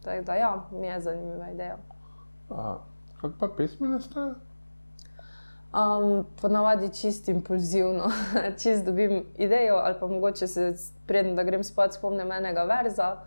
Tako da ja, mi je zanimiva ideja. Kako pa pesmi nastajajo? Ponavadi čist impulzivno, čist dobim idejo ali pa mogoče se preden da grem spat spomnim enega verza,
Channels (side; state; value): both; inverted; correlation -1.00